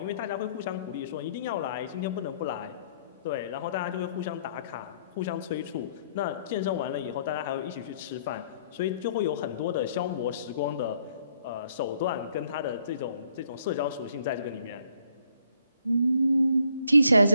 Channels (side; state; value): both; inverted; correlation -0.66